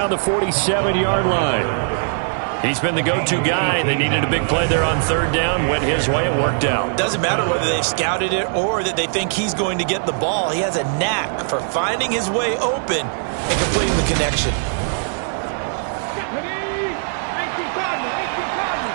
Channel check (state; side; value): silent; left; 66 dB below the other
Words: the 47-yard line. He's been the go-to guy. They needed a big play there on 3rd down. Went his way. It worked out. Doesn't matter whether they've scouted it or that they think he's going to get the ball. He has a knack for finding his way open and completing the connection.